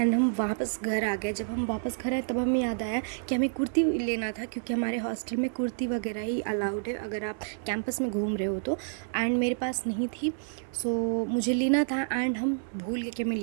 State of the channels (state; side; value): silent; left; digital silence